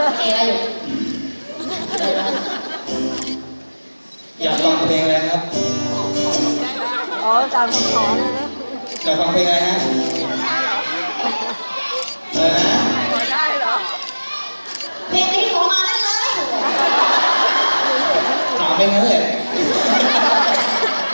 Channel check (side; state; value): both; inverted; correlation -1.00